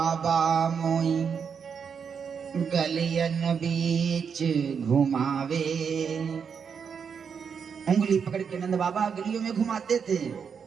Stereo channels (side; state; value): left; quieter; 6.6 dB